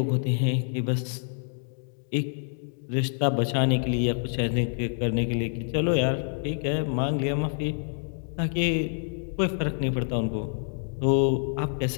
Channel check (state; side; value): silent; right; digital silence